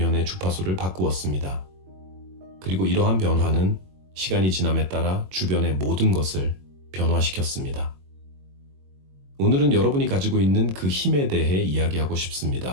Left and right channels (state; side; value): late; left; 21 ms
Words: 주파수를 바꾸었습니다. 그리고 이러한 변화는 시간이 지남에 따라 주변의 모든 것을 변화시켰습니다. 오늘은 여러분이 가지고 있는 그 힘에 대해 이야기하고